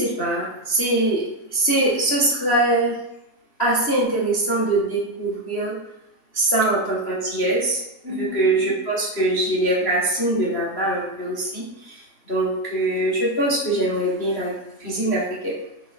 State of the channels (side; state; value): right; late; 3.1 ms